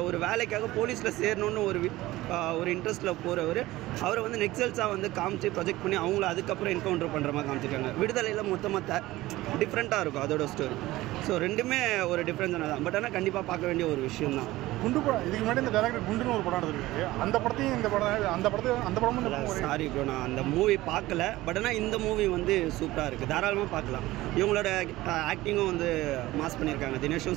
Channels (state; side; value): quieter; left; 17.7 dB